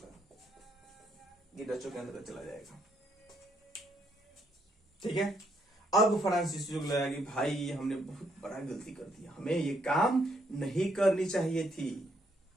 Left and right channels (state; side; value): normal; both; correlation 0.73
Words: ये डचों के अंदर चला जाएगा। ठीक है, अब फ्रांसीसियों को लगा कि भाई हमने बहुत बड़ा गलती कर दिया, हमें ये काम नहीं करनी चाहिए थी।